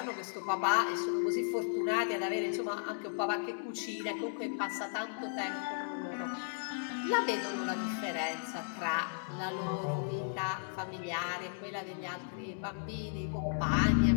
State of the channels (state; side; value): silent; right; digital silence